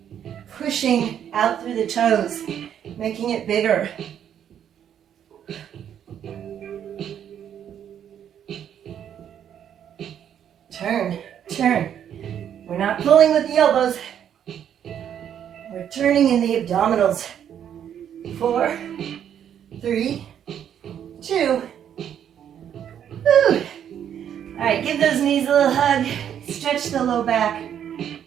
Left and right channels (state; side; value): quieter; left; 9.4 dB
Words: pushing out through the toes, making it bigger. Turn, turn. We're not pulling with the elbows. We're turning in the abdominals. 4, 3, 2. Woo. All right, give those knees a little hug. Stretch the low back.